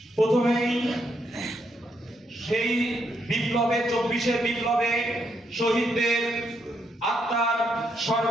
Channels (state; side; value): normal; both; correlation 0.77